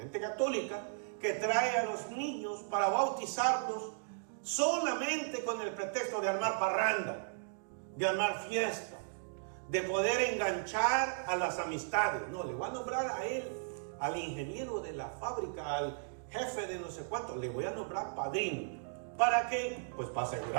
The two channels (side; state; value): left; silent; digital silence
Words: católica, que trae a los niños para bautizarlos solamente con el pretexto de armar parranda, de armar fiesta, de poder enganchar a las amistades. No, le va a nombrar a él, al ingeniero de la fábrica, al jefe de no sé cuánto, le voy a nombrar padrino. ¿Para qué? Pues para